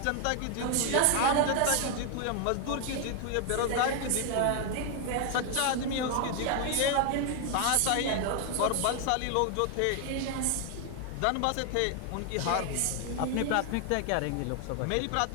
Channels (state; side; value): different; both; correlation 0.01